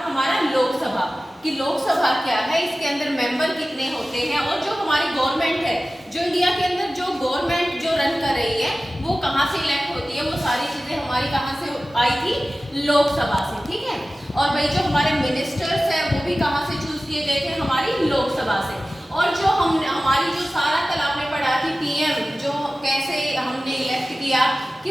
हमारा लोकसभा कि लोकसभा क्या है, इसके अंदर मेंबर कितने होते हैं, और जो हमारी गवर्नमेंट है, जो इंडिया के अंदर जो गवर्नमेंट जो रन कर रही है वो कहाँ से इलेक्ट होती है, वो सारी चीजें हमारी कहाँ से आई थी? लोकसभा से। ठीक है, और भाई जो हमारे मिनिस्टर्स है वो भी कहाँ से चूज किए गए थे? हमारी लोकसभा से। और जो हमारी जो सारा कल आपने पढ़ा थी पीएम जो कैसे हमने इलेक्ट किया कि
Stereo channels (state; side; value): normal; both; correlation 0.96